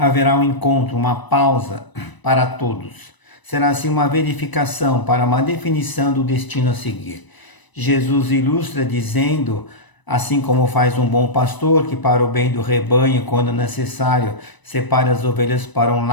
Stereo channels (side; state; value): right; late; 1.0 ms